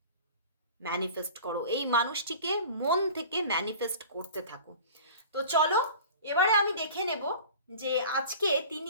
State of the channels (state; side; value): inverted; both; correlation -0.41